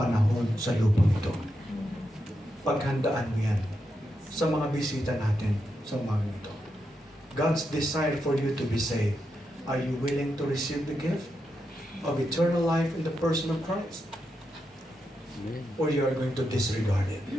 sa lupang ito. Paghandaan mo yan sa mga bisita natin sa umaga ito. God's desire for you to be saved. Are you willing to receive the gift of eternal life in the person of Christ? Amen. Or you are going to disregard it?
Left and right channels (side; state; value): both; normal; correlation 0.85